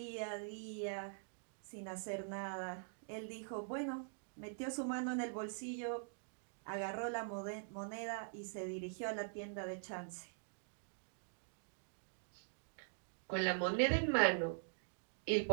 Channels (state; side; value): silent; left; digital silence